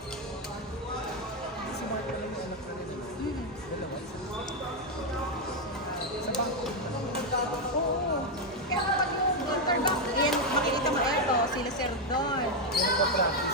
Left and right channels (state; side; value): normal; both; correlation 0.03